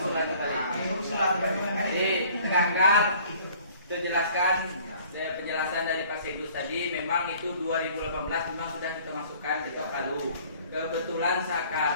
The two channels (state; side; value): inverted; both; correlation -0.53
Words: kembali. Usulan kembali. Jadi tegakkan, itu jelaskan. Penjelasan dari Pak Sedus tadi memang itu 2018 memang sudah kita masukkan di Ketok Palu. Kebetulan